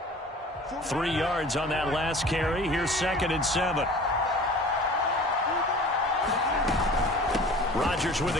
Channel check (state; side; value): normal; both; correlation 0.43